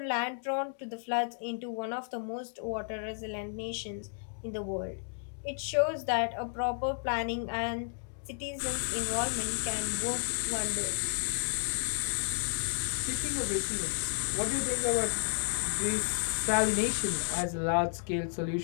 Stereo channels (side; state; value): right; silent; digital silence